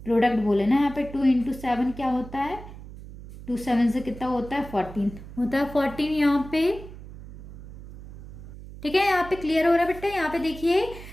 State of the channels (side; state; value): right; noise; hum, 14 dB below the sound